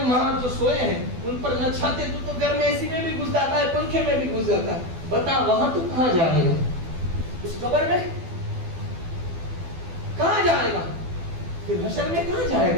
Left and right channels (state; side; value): late; left; 12 ms